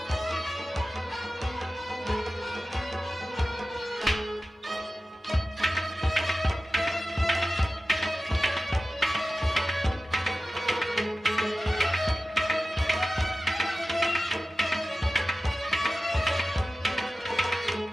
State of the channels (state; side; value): normal; both; correlation 0.94